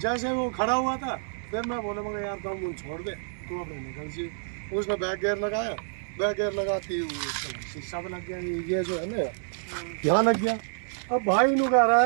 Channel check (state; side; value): silent; left; 59 dB below the other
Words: जैसे वो खड़ा हुआ था, फिर मैं बोले मगर यार तुम मुझे छोड़ दे, तो अब निकल जी। उसने बैक गियर लगाया, बैक गियर लगाती शीशा में लग गया, ये जो है ना यहाँ लग गया। अब भाई नु कह रहा